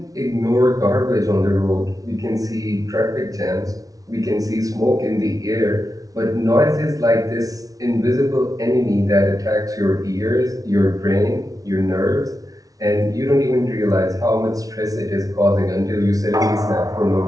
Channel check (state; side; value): late; left; 0.18 ms